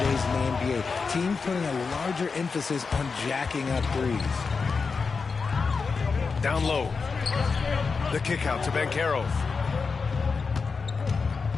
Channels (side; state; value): right; quieter; 4.9 dB